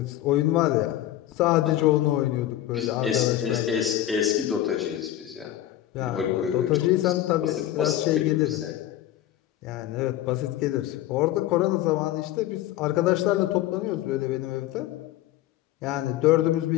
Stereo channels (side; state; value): right; quieter; 13.3 dB